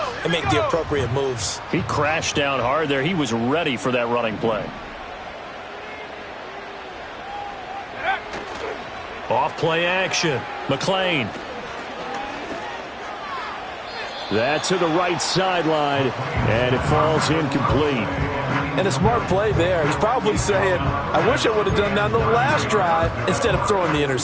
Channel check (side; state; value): both; identical; correlation 1.00